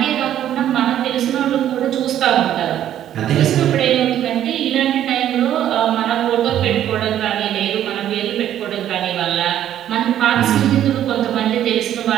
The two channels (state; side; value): quieter; left; 11.2 dB